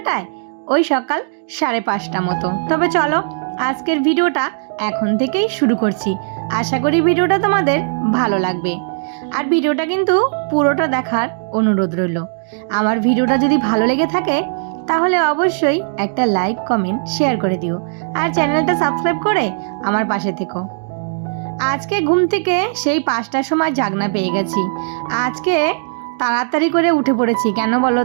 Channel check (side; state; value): left; silent; digital silence